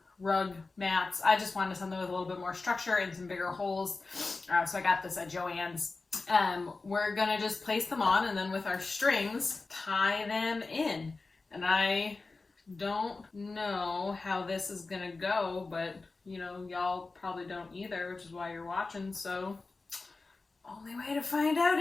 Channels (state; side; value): quieter; right; 3.7 dB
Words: rug mats. I just wanted something with a little bit more structure and some bigger holes. So I got this at Joann's. We're gonna just place them on and then with our strings, tie them in. And I don't know how this is gonna go, but you know, y'all probably don't either, which is why you're watching. So only way to find out